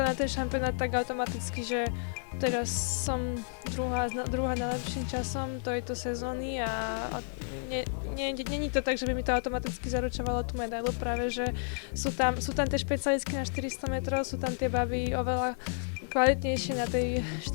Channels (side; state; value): right; silent; 57 dB below the other